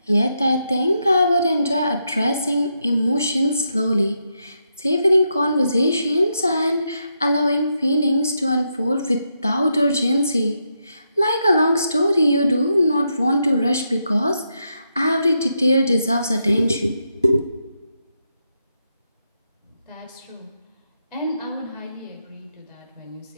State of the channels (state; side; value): inverted; both; correlation -0.82